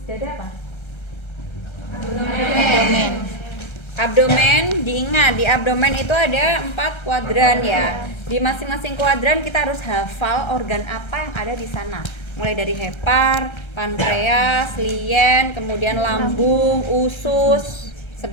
dada apa? Abdomen, diingat di abdomen itu ada 4 kuadran ya. Di masing-masing kuadran kita harus hafal organ apa yang ada di sana. Mulai dari hepar, pankreas, lien, kemudian lambung, usus,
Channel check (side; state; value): right; late; 1.3 ms